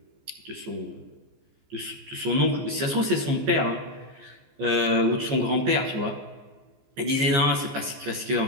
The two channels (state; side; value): late; left; 15 ms